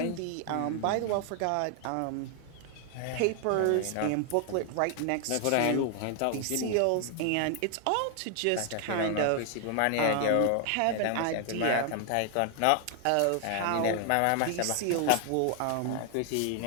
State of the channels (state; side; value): different; both; correlation 0.00